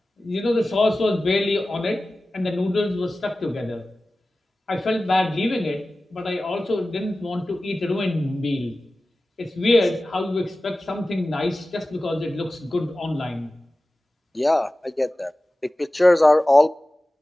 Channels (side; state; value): both; normal; correlation 0.96